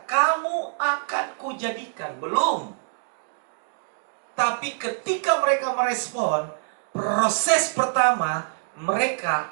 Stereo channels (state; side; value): silent; left; digital silence